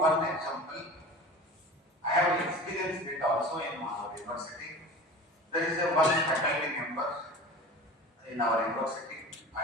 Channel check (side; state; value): both; normal; correlation 0.36